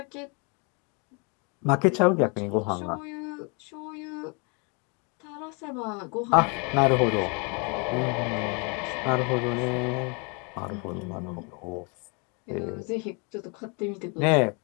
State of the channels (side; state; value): right; quieter; 33.4 dB